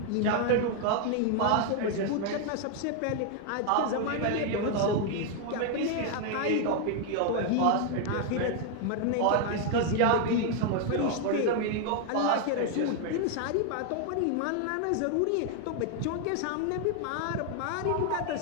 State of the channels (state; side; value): different; both; correlation 0.00